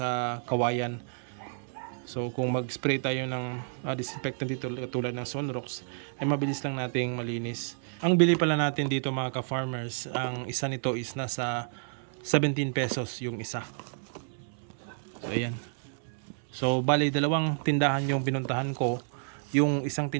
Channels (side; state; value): left; silent; 58 dB below the other